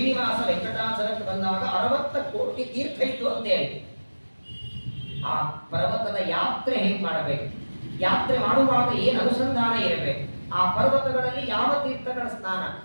ವೆಂಕಟಾಚಲಕ್ಕೆ ಬಂದಾಗ 60 ಕೋಟಿ ತೀರ್ಥ ಇತ್ತು ಅಂತೇಳಿ. ಆ ಪರ್ವತದ ಯಾತ್ರೆ ಹೇಗೆ ಮಾಡಬೇಕು, ಯಾತ್ರೆ ಮಾಡುವಾಗ ಏನು ಅನುಸಂಧಾನ ಇರಬೇಕು, ಆ ಪರ್ವತಗಳಲ್ಲಿ ಯಾವ ತೀರ್ಥಗಳ ಸ್ನಾನ,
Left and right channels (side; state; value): both; inverted; correlation -1.00